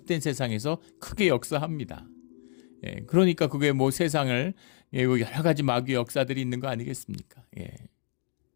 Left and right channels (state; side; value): silent; right; digital silence